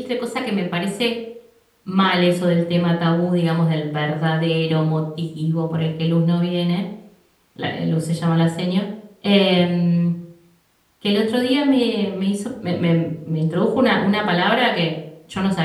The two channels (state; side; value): identical; both; correlation 1.00